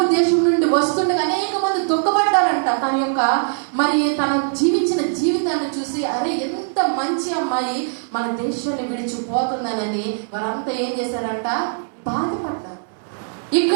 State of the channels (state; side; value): silent; left; 60 dB below the other